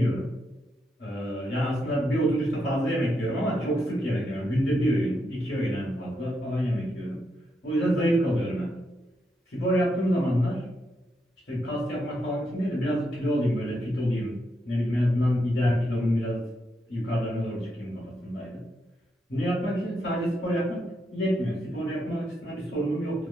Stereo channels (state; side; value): normal; both; correlation 0.81